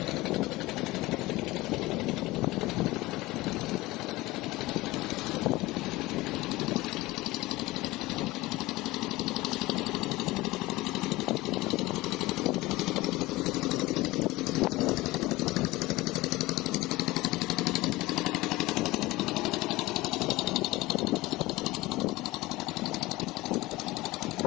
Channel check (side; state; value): right; quieter; 19.7 dB